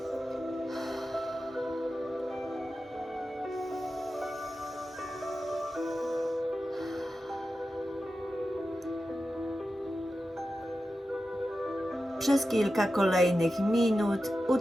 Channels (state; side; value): normal; both; correlation 0.92